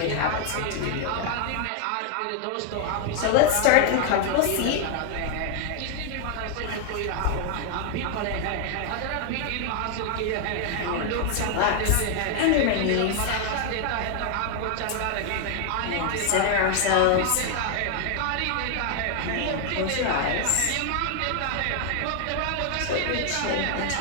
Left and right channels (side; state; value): both; different; correlation 0.00